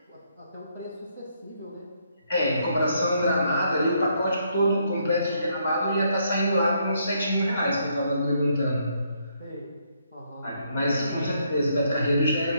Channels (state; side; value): inverted; both; correlation -0.73